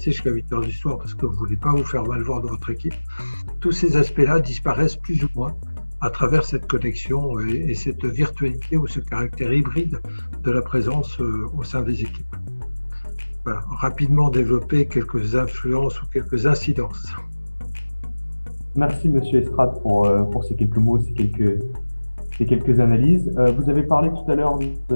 jusqu'à 8h du soir parce que vous ne voulez pas vous faire mal voir dans votre équipe. Tous ces aspects-là disparaissent plus ou moins à travers cette connexion et cette virtualité ou ce caractère hybride de la présence au sein des équipes. Voilà, rapidement développer quelques influences ou quelques incidences. Merci, Monsieur Estrade, pour ces quelques mots, ces quelques analyses. Vous avez parlé tout à l'heure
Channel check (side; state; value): both; inverted; correlation -1.00